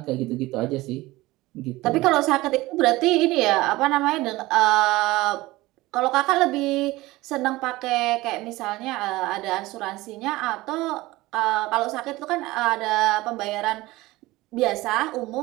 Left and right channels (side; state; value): left; quieter; 19.3 dB